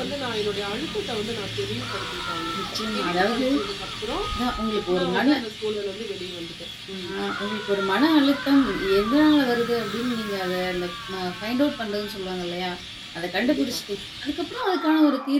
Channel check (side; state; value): both; identical; correlation 1.00